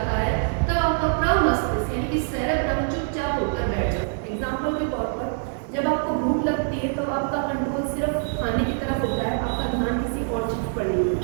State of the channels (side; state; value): left; silent; digital silence